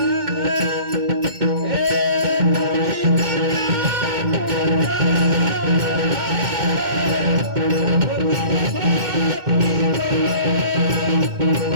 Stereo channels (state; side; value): late; left; 2.1 ms